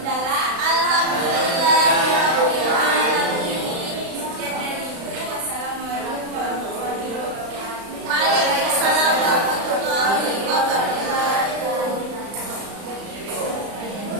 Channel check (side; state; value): left; late; 35 ms